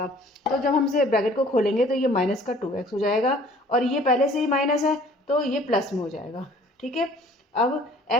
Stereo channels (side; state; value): both; normal; correlation 0.53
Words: तो जब हम इसे ब्रैकेट को खोलेंगे तो ये माइनस का 2x हो जाएगा, और ये पहले से ही माइनस है तो ये प्लस में हो जाएगा। ठीक है, अब